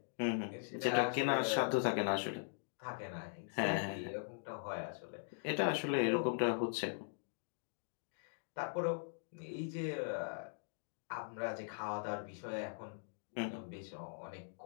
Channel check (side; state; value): right; silent; digital silence